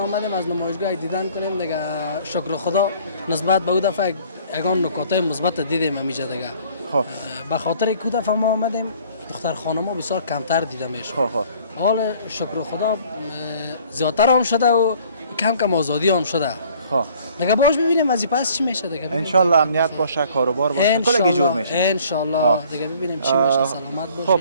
از نمایشگاه دیدن کنیم دیگه. شکر خدا نسبت به اون دفعه یگان نکات مثبت دیدیم همیشه دیگه. خب به خاطر که دفعه ما آمدیم دختر خانم‌ها بسیار کمتر دیده میشه. حال شکر خدا زیادتر هم شده و کم کم آزادی هم شده. دیگه باش ببینیم از پس چی میشه دیگه. ان شاء الله امنیت باشه، کاروبار باشه، کلی جور میشه. ان شاء الله دیگه ببینیم چی میشه. سلامت باشید. خب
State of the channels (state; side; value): inverted; both; correlation -0.55